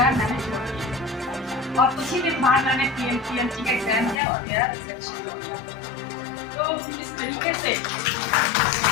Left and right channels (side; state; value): right; drops out; at 4.2 s